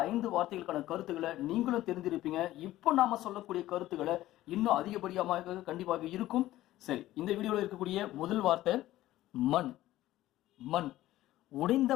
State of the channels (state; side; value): quieter; right; 15.2 dB